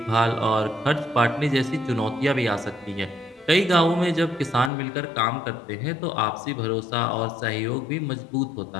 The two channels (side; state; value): right; drops out; at 4.7 s